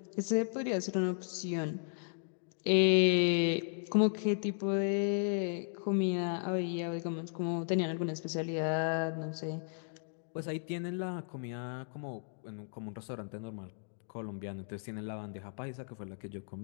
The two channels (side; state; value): right; silent; digital silence